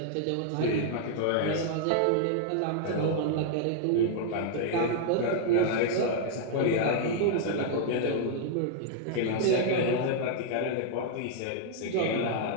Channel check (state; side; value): different; both; correlation -0.01